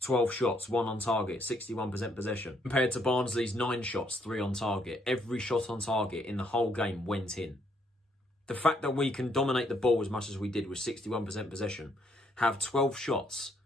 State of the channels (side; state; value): both; normal; correlation 0.70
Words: shots, 1 on target, 61% possession. Compared to Barnsley's 9 shots, 3 on target. Every shot on target in the whole game went in. The fact that we can dominate the ball as much as we did with 61% possession, have 12 shots,